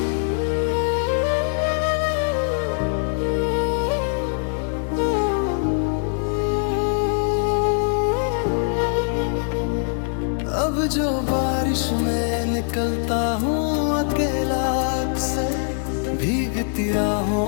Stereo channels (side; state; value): right; silent; 59 dB below the other